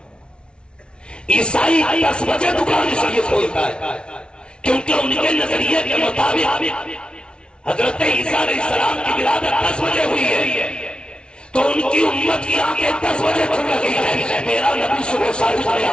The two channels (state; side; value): late; right; 0.057 ms